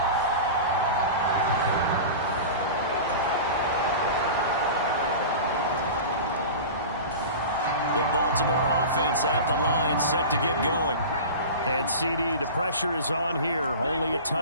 The Baltimore offense at the line, set to get going. And CD, the pressure is on here. Only a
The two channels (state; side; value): inverted; both; correlation -0.32